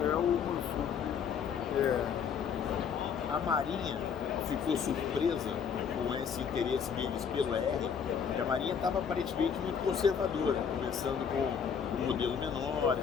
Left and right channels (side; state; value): right; quieter; 7.0 dB